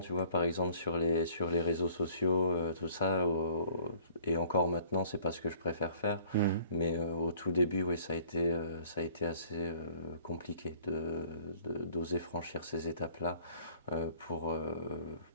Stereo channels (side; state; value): both; inverted; correlation -0.55